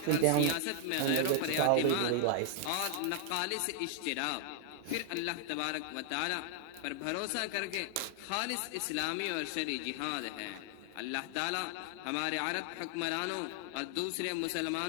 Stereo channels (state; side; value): different; both; correlation 0.00